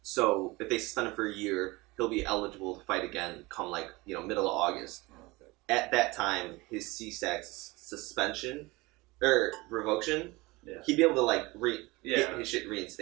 So if they suspend him for a year, he'll be eligible to fight again come like, middle of August. Okay. At that time, his CSAC suspension or revocation, he'd be able to like get his shit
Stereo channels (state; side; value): quieter; left; 22.7 dB